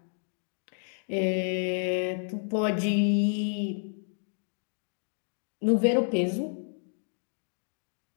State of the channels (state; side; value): silent; right; digital silence